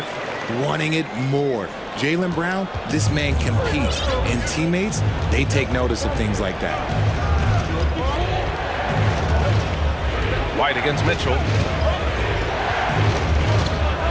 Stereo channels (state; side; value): identical; both; correlation 1.00